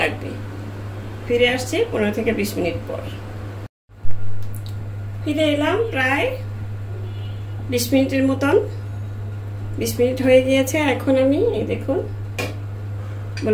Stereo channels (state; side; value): identical; both; correlation 1.00